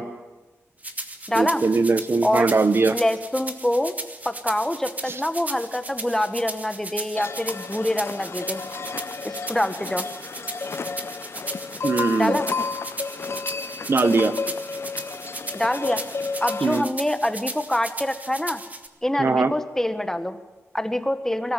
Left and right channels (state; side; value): normal; both; correlation 0.84